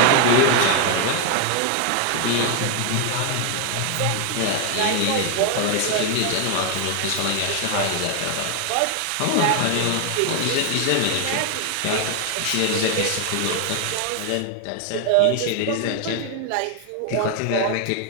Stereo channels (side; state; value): both; different; correlation 0.00